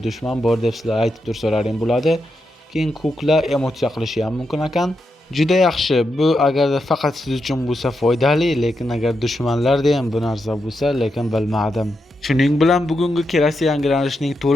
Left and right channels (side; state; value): both; normal; correlation 0.85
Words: dushman bor deb sizlar aytib tursalaring bo'ladi. Keyin kukla emotsiya qilishi ham mumkin ekan. Juda yaxshi. Bu agarda faqat siz uchun bo'lsa foydali, lekin agar dushmanlarda ham bu narsa bo'lsa, lekin bilmadim. Shuning bilan bugungi kelasi yangilanishning